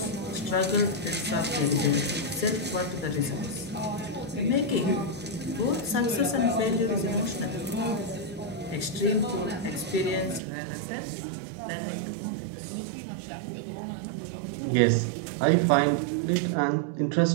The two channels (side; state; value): left; drops out; at 10.4 s